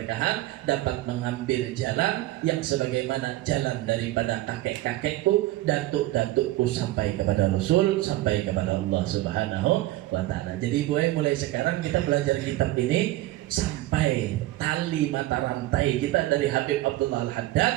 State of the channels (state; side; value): quieter; left; 16.7 dB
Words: dapat mengambil jalan yang sebagaimana jalan daripada kakek-kakekku, datuk-datukku sampai kepada Rasul, sampai kepada Allah Subhanahu Wa Taala. Jadi mulai sekarang kita belajar kitab ini sampai tali mata rantai kita dari Habib Abdullah